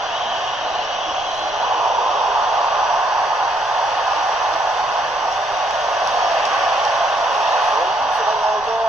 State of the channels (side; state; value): right; noise; rumble, 25 dB below the sound